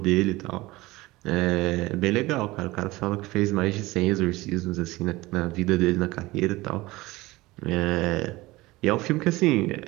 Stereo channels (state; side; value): quieter; left; 20.0 dB